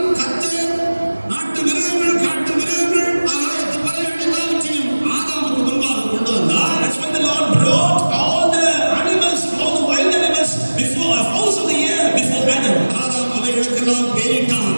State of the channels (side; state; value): both; inverted; correlation -1.00